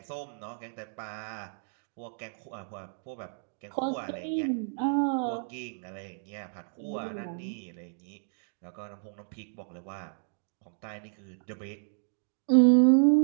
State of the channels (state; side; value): silent; left; digital silence